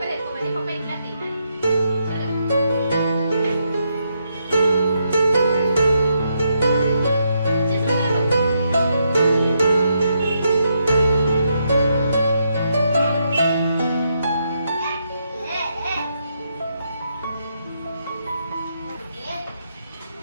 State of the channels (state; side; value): inverted; both; correlation -0.79